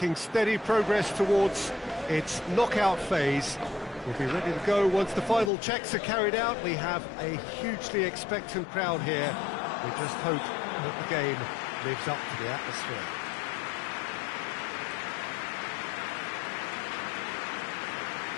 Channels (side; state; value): right; drops out; at 5.5 s